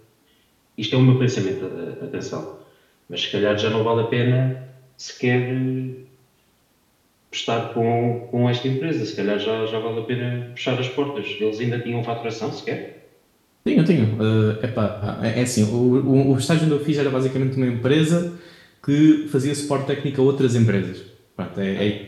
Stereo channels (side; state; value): both; identical; correlation 1.00